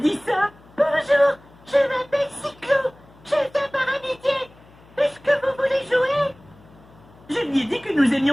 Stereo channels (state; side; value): noise; left; hum, 26 dB below the sound